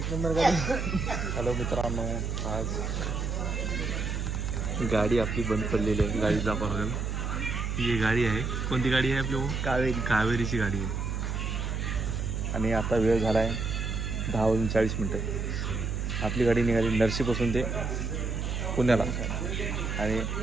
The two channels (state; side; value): noise; right; hum, 2 dB below the sound